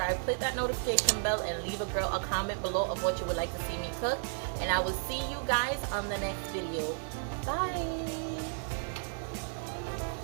click that notification bell, and leave a girl a comment below of what you would like to see me cook. And I will see you guys on the next video. Bye.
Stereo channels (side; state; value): left; silent; 56 dB below the other